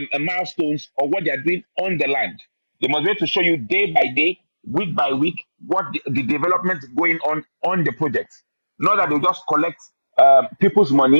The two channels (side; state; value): both; inverted; correlation -1.00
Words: milestones of what they are doing on the land. They must be able to show you day by day week by week what the development going on the project. Not that they just collect people's